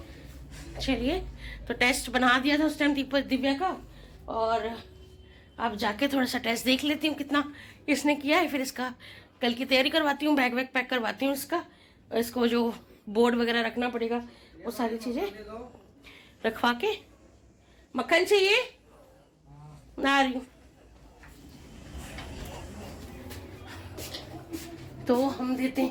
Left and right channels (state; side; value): identical; both; correlation 1.00